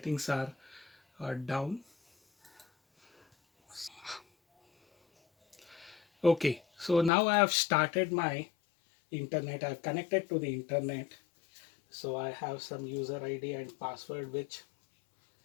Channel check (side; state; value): right; drops out; at 7.1 s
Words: are down. Okay, so now I have started my internet. I've connected to the internet. So I have some user ID and password which